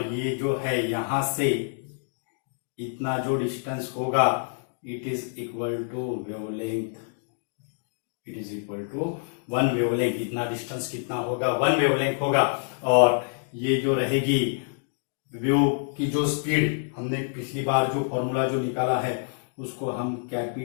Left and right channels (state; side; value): silent; right; digital silence